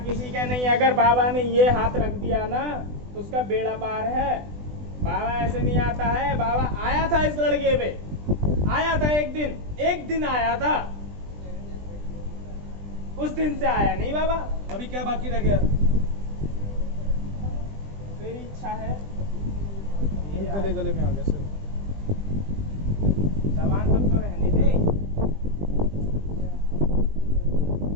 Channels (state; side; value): late; left; 20 ms